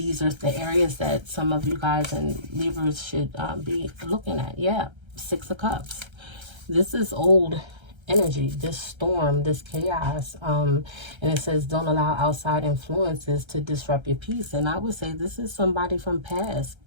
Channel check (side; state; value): left; late; 1.3 ms